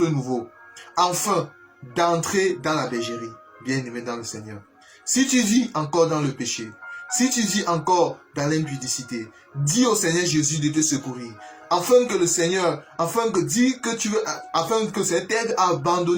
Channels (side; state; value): both; identical; correlation 1.00